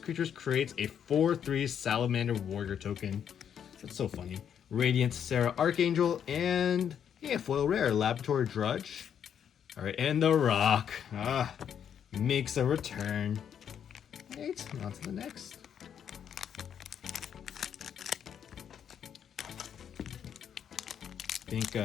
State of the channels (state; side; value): quieter; right; 8.6 dB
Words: creatures creates a 4/3 Salamander Warrior token. That's so funny. Radiant Sarah Archangel, and yeah, foil rare, Laboratory Drudge. All right, and the Rock makes a return. Right, on to the next. I think